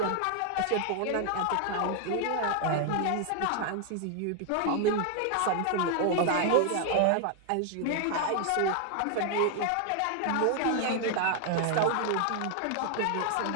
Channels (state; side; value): different; both; correlation 0.00